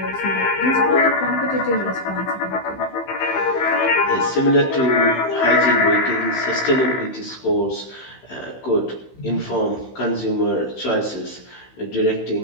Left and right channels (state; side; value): late; right; 15 ms